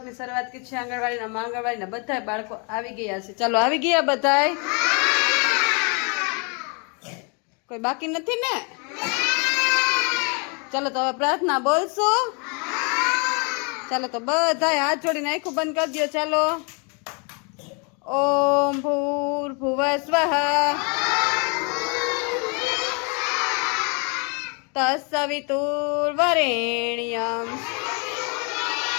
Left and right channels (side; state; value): right; quieter; 35.4 dB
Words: શરૂઆત કરી છે આંગણવાડીના બધા બાળકો આવી ગયા છે। ચાલો આવી ગયા બધાય? કોઈ બાકી નથી ને? ચાલો તો હવે પ્રાર્થના બોલશું। ચાલો તો બધાય હાથ જોડીને આંખો બંધ કરી દો। ચાલો ઓમ ભૂર્ભુવઃ સ્વઃ તત્સવિતુર્વરેણ્યં